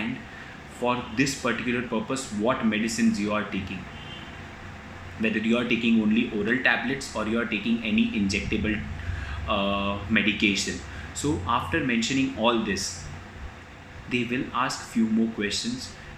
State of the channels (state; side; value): identical; both; correlation 1.00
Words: for this particular purpose what medicines you are taking, whether you are taking only oral tablets or you are taking any injectable medication. So after mentioning all this, they will ask few more questions,